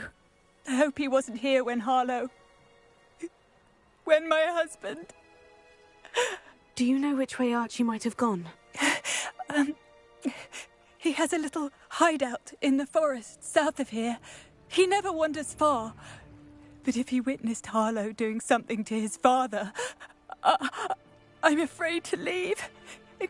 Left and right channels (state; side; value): identical; both; correlation 1.00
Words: I hope he wasn't here when Harlow... when my husband... Do you know which way Archie might have gone? He has a little hideout in the forest south of here. He never wanders far. But if he witnessed Harlow doing something to his father, I'm afraid to leave, in